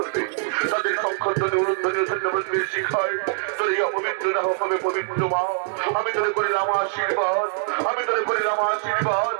তাদের সংখ্যধ্বনি উলুধ্বনি ও সন্ধ্যাপতির শিখায় তোর এই অপবিত্র না হবে পবিত্র মা। আমি তোরে করিলাম আশীর্বাদ, আমি তোরে করিলাম আশীর্বাদ,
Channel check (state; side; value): silent; left; digital silence